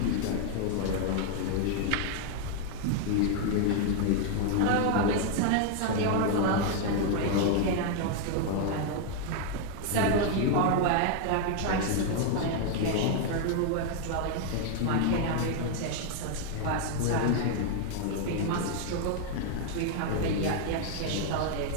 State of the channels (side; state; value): both; different; correlation 0.00